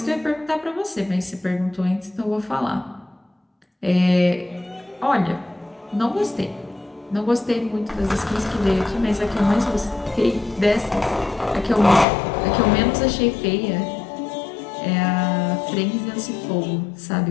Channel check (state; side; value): drops out; right; at 12.1 s